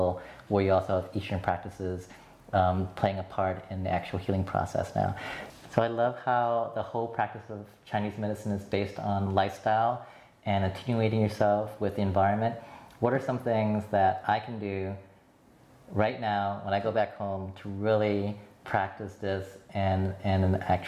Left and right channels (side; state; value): both; identical; correlation 1.00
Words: where you also have Eastern practices playing a part in the actual healing process now. So I love how the whole practice of Chinese medicine is based on lifestyle and attenuating yourself with the environment. What are some things that I can do right now when I go back home to really practice this in an